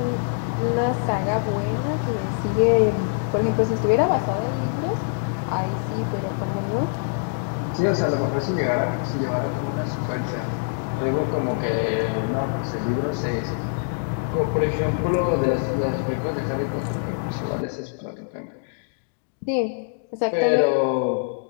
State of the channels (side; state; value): right; silent; digital silence